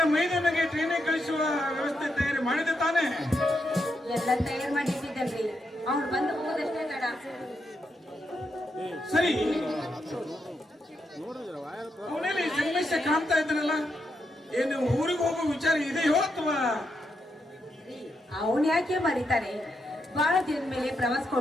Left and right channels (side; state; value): both; normal; correlation 0.82